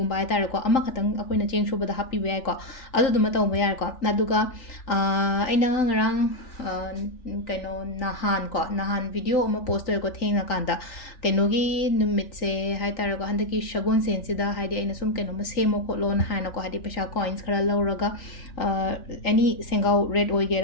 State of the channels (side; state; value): right; late; 3.4 ms